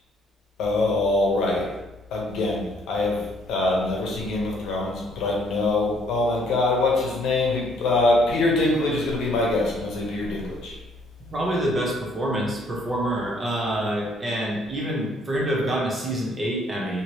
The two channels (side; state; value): both; normal; correlation 0.65